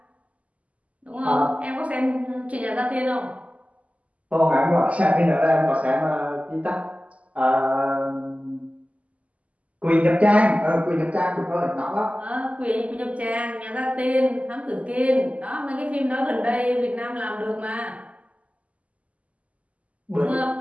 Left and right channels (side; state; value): left; late; 0.068 ms